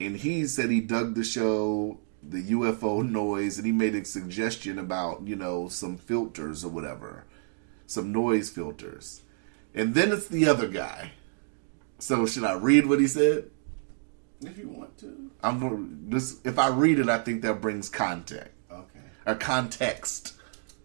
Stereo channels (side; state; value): left; silent; digital silence